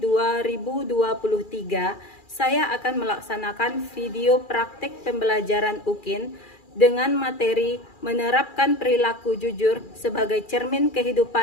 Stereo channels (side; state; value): right; late; 2.4 ms